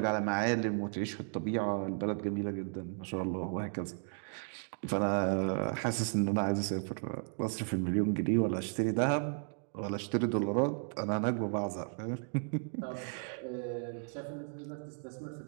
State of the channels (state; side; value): silent; left; 55 dB below the other